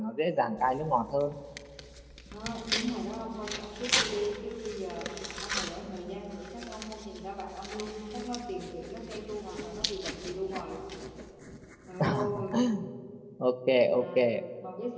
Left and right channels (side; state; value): both; identical; correlation 1.00